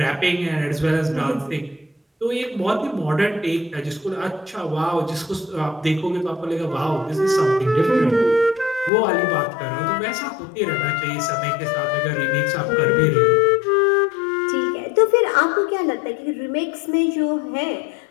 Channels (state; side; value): drops out; right; at 8.9 s